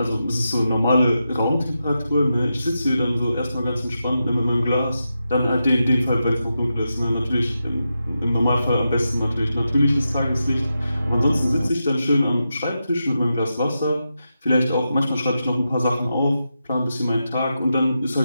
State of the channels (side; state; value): both; inverted; correlation -0.88